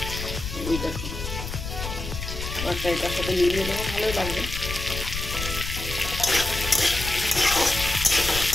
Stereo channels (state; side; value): noise; left; rumble, 6 dB below the sound